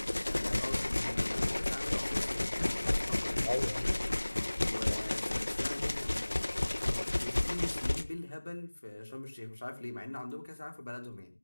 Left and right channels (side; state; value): both; inverted; correlation -1.00